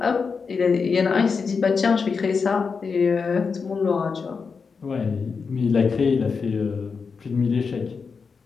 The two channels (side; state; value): right; quieter; 5.3 dB